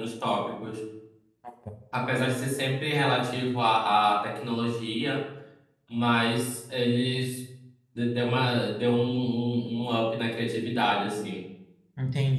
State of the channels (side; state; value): both; identical; correlation 1.00